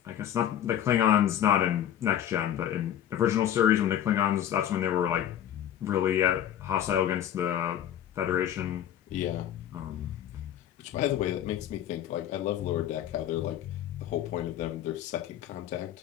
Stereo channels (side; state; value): right; quieter; 10.8 dB